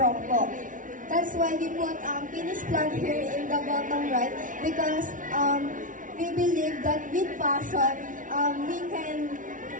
po. That's why we put finish plug here in the bottom right because we believe that with passion, we can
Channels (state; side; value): late; left; 0.38 ms